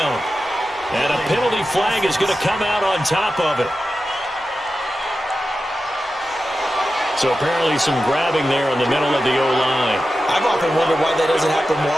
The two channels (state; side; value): normal; both; correlation 0.92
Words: And a penalty flag is going to come out on top of it. So apparently some grabbing there in the middle of the O-line. I've often wondered why that doesn't happen more